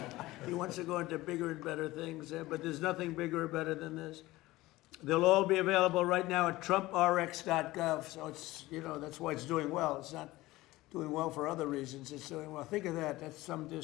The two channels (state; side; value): quieter; right; 18.4 dB